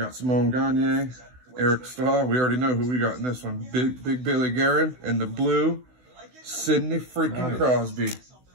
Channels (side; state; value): left; late; 16 ms